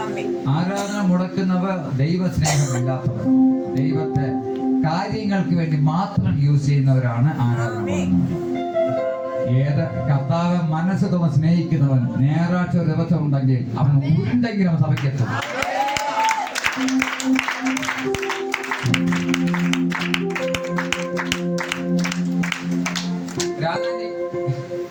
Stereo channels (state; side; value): identical; both; correlation 1.00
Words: ആരാധന മുടക്കുന്നവർ ദൈവസ്നേഹമില്ലാത്തവർ, ദൈവത്തെ കാര്യങ്ങൾക്ക് വേണ്ടി മാത്രം യൂസ് ചെയ്യുന്നവരാണ് ആരാധന മുടങ്ങുന്നവർ. ഏത് കർത്താവ് മനസ്സ് തോന്നി സ്നേഹിക്കുന്നവൻ ഞായറാഴ്ച ദിവസം ഉണ്ടെങ്കിൽ അവൻ ഉരുണ്ടെങ്കിലും സഭയ്ക്കെത്തും. രാജാജി